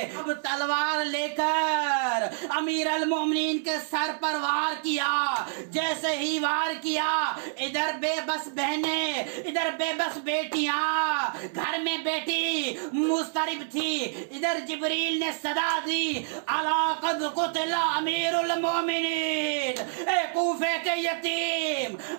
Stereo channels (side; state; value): left; silent; digital silence